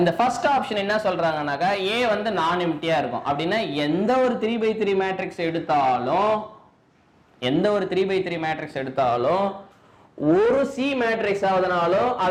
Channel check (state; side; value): identical; both; correlation 1.00